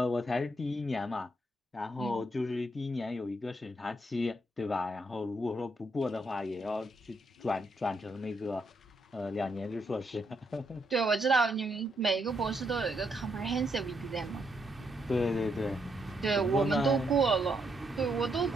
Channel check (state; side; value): normal; both; correlation 0.77